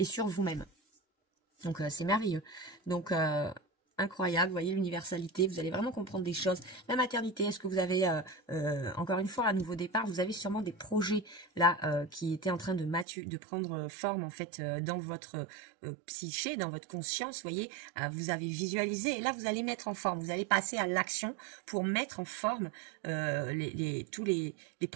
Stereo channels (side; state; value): left; drops out; at 13.1 s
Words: sur vous-même. Donc c'est merveilleux. Donc incroyable, vous voyez l'universalité, vous allez vraiment comprendre des choses. La maternité, est-ce que vous avez, encore une fois, à nouveau départ, vous avez sûrement des projets là qui étaient en train de prendre forme en fait dans votre psyché, dans votre conscience, vous voyez, vous avez visualisé et là vous allez mettre en forme, vous allez passer à l'action pour mettre en forme tous les